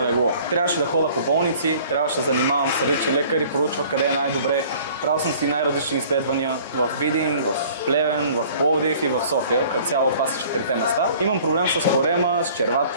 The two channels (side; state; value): both; inverted; correlation -0.51